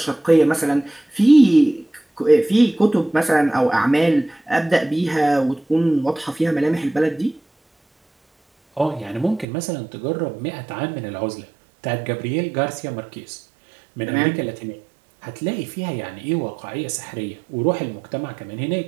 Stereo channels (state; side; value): drops out; left; at 9.5 s